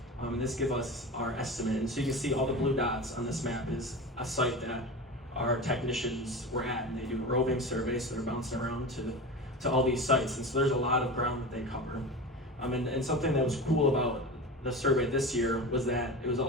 and this gives us our estimate. And so you can see all the blue dots on this map is a site that our technicians were at, and they do a roving survey, so they're bouncing around to all these sites, and so there's a lot of ground that they cover. And something that was cool about the survey this year was that it was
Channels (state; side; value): normal; both; correlation 0.29